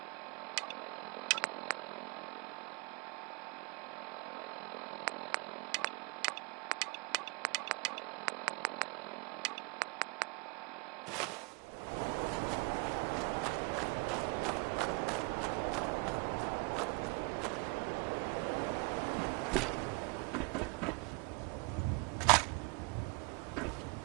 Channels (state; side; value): quieter; left; 30.2 dB